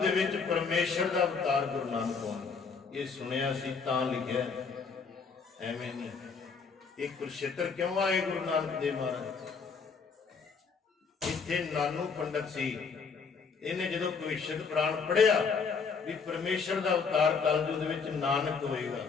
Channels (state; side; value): quieter; right; 5.3 dB